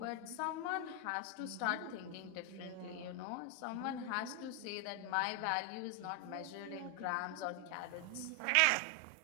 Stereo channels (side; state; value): both; different; correlation 0.00